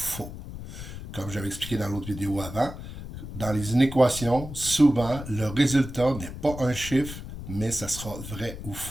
Comme j'avais expliqué dans l'autre vidéo avant, dans les inéquations, souvent, le résultat n'est pas un chiffre, mais ça sera vrai ou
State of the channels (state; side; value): noise; left; rumble, 10 dB below the sound